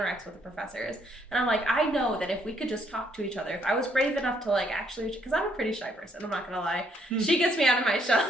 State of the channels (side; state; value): both; normal; correlation 0.69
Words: with the professors. And I'm like, I know that if we could just talk to each other, if I was brave enough to like actually, because I'm a pretty shy person, I'm not gonna lie. She gets me out of my